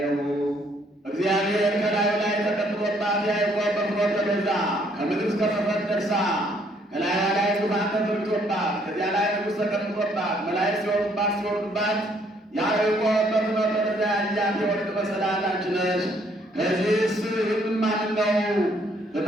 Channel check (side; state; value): both; normal; correlation 0.66